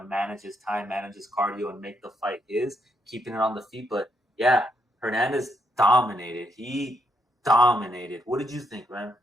manage his time, manage his cardio, and make the fight his, keeping it on the feet. But yeah, Hernandez dominated. He dominated. What did you think, man?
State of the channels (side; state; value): both; normal; correlation 0.77